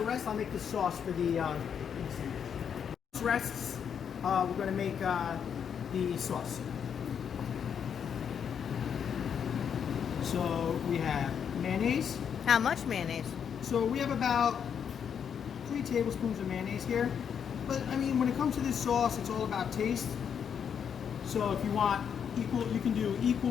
rest, I'll make the sauce for the sandwich. This rests, we're going to make the sauce. So we have mayonnaise. How much mayonnaise? So we have about 3 tablespoons of mayonnaise here. But I mean, when it comes to this sauce, it's all about taste. So if you want equal, you can do equal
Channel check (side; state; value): right; quieter; 7.7 dB